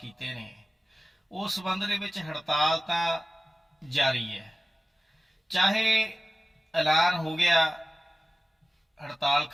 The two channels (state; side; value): normal; both; correlation 0.97